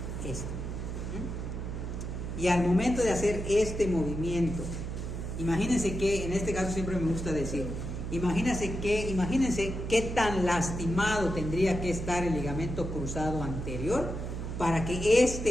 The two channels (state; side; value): noise; right; hum, 5 dB below the sound